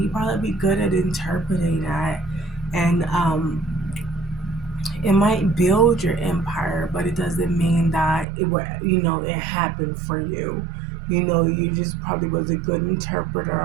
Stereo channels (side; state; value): left; drops out; at 8.2 s